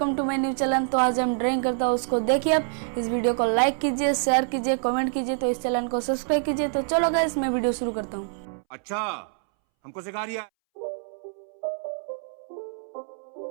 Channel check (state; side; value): silent; left; 61 dB below the other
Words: to my new channel. तो आज हम ड्राइंग करता हूँ, उसको देखिए। आप इस वीडियो को लाइक कीजिए, शेयर कीजिए, कमेंट कीजिए, तो इस चैनल को सब्सक्राइब कीजिए। तो चलो गाइस, मैं वीडियो शुरू करता हूँ। अच्छा, हमको सिखा रिया।